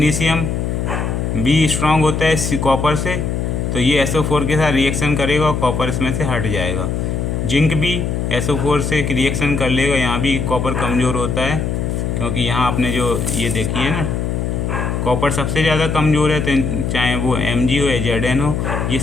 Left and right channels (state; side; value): noise; left; hum, 1 dB below the sound